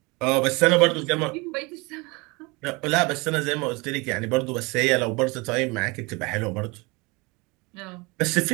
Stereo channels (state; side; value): quieter; left; 26.4 dB